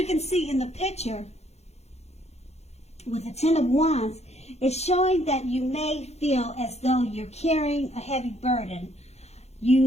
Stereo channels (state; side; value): late; right; 0.31 ms